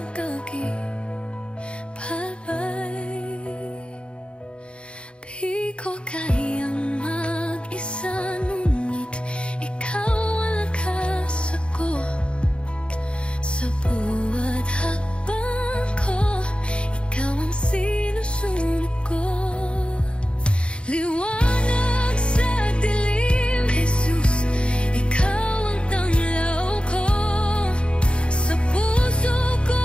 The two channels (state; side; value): late; right; 0.057 ms